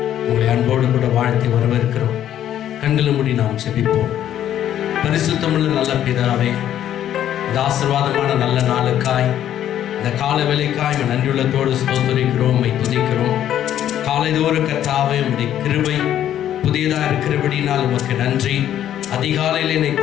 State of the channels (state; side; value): quieter; right; 11.1 dB